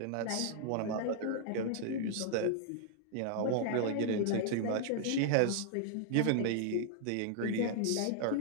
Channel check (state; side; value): different; both; correlation -0.01